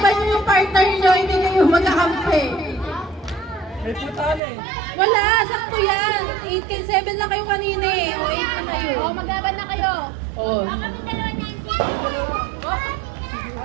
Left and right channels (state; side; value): drops out; left; at 4.4 s